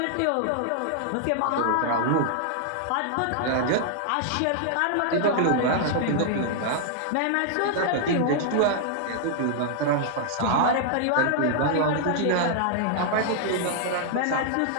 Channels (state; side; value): different; both; correlation -0.01